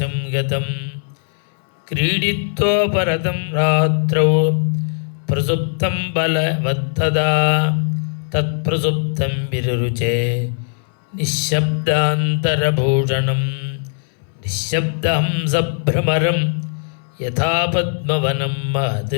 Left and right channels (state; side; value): silent; right; 62 dB below the other